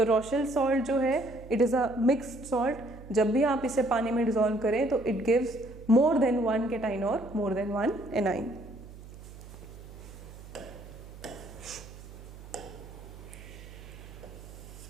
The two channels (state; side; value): noise; right; hum, 16 dB below the sound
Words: रोशेल सॉल्ट जो है it is a mixed salt, जब भी आप इसे पानी में डिसॉल्व करें तो it gives more than 1 cation और मोर देन 1 एनाइन।